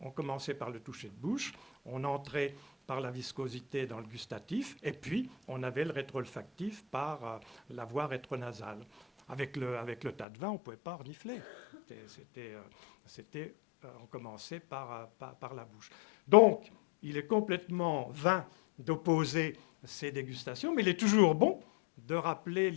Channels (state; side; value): drops out; right; at 10.2 s